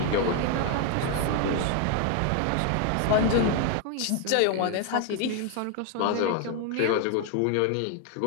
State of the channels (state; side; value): different; both; correlation 0.01